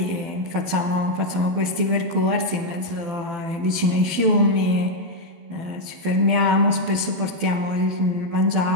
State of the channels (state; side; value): late; left; 12 ms